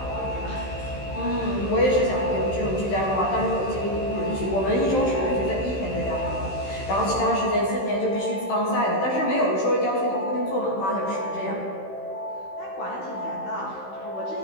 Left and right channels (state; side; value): late; right; 15 ms